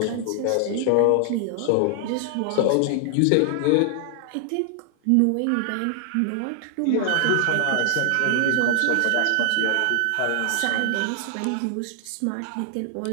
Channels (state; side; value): different; both; correlation 0.00